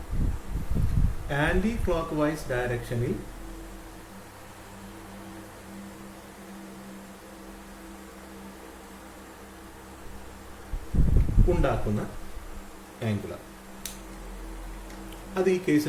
ആന്റി ക്ലോക്ക് വൈസ് ഡയറക്ഷനിൽ ഉണ്ടാക്കുന്ന ആംഗുലർ. അത് ഈ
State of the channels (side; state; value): both; identical; correlation 1.00